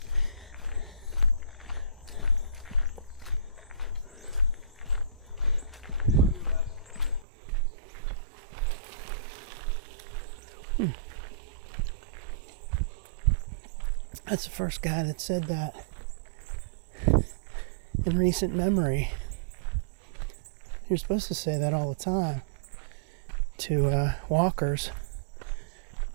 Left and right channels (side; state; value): left; drops out; at 7.2 s